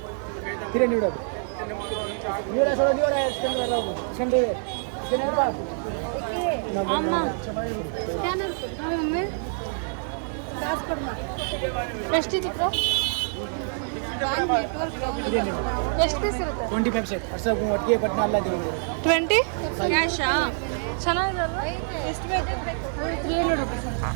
ಅಮ್ಮ ಎಷ್ಟಿತ್ತು ಬ್ರೋ? ಎಷ್ಟು ಪೀಸ್ ಇರುತ್ತೆ? 25 ಸೆಟ್ 20 ಕ್ಯಾಶಾ? ಚೆನ್ನಾಗಿದೆಲ್ಲ. ಎಷ್ಟು ಬೇಕು? 300 ರುಪೀಸ್.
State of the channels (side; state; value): left; silent; 61 dB below the other